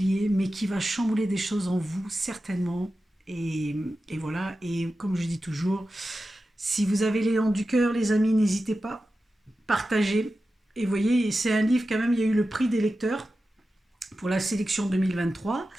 mais qui va chambouler des choses en vous, certainement. Et voilà, et comme je dis toujours, si vous avez l'élan du cœur, les amis, n'hésitez pas, partagez. Et vous voyez, c'est un livre quand même, il y a eu le prix des lecteurs pour la sélection 2023.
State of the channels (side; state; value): both; normal; correlation 0.93